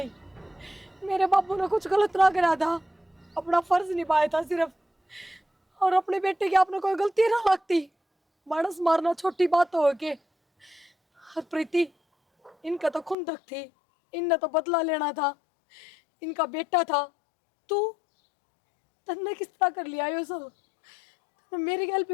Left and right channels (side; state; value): right; drops out; at 13.2 s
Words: मेरे बाबू ने कुछ गलत ना करा था, अपना फर्ज निभाया था सिर्फ, और अपने बेटे की आपने कोई गलती ना लगती। मानस मारना छोटी बात हो के। और प्रीति इनका तो खुंदक थी, इनने तो बदला लेना था, इनका बेटा था। तू तन्ने किस तरह कर लिया ये सब? तन्ने मेरी गल